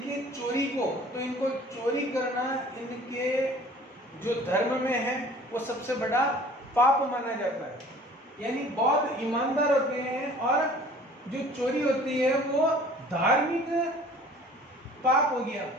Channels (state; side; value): normal; both; correlation 0.49